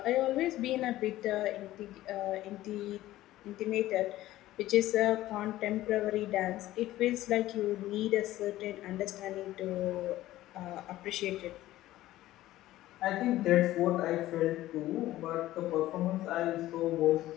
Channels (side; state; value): right; quieter; 15.4 dB